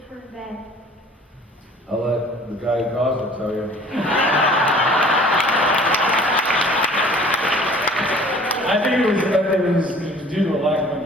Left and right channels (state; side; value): normal; both; correlation 0.50